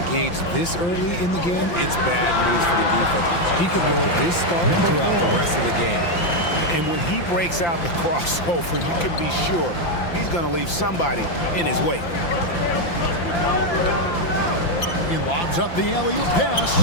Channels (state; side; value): late; right; 5.8 ms